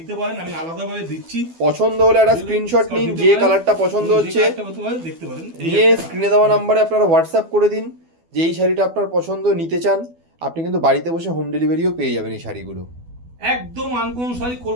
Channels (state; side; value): late; left; 12 ms